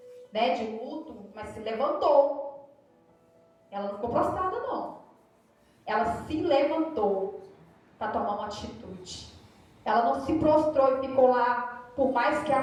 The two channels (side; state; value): both; identical; correlation 1.00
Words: né, de luto, mas se levantou. Ela não ficou prostrada, não. Ela se levantou para tomar uma atitude. Ela não se prostrou e ficou lá, por mais que